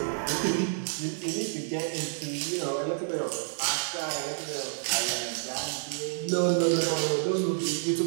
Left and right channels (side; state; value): left; silent; digital silence